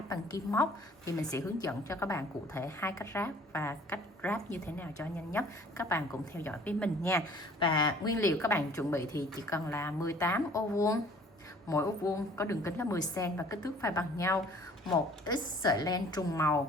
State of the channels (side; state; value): both; normal; correlation 0.53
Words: bằng kim móc. Thì mình sẽ hướng dẫn cho các bạn cụ thể hai cách ráp và cách ráp như thế nào cho nhanh nhất. Các bạn cùng theo dõi với mình nha. Và nguyên liệu các bạn chuẩn bị thì chỉ cần là 18 ô vuông, mỗi ô vuông có đường kính là 10 cm và kích thước phải bằng nhau, một ít sợi len trùng